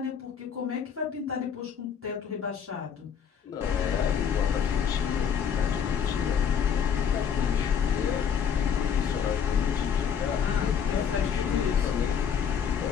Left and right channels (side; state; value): right; quieter; 7.5 dB